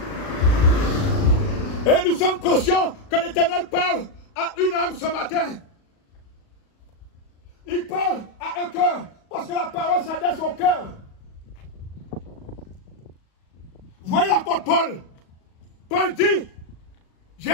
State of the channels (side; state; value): right; late; 37 ms